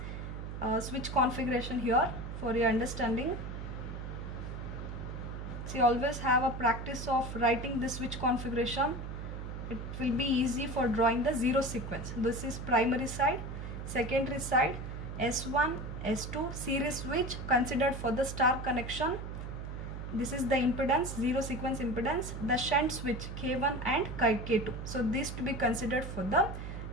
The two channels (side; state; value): right; noise; hum, 7 dB below the sound